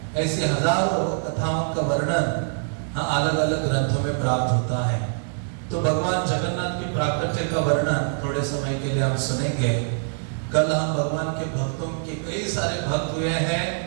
ऐसी हजारों कथाओं का वर्णन अलग अलग ग्रंथों में प्राप्त होता है। तो भगवान जगन्नाथ की प्राकट्य का वर्णन थोड़े समय के लिए हम सुनेंगे। कल हम भगवान के भक्तों के कई सारे भक्त हुए हैं,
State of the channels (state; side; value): silent; left; digital silence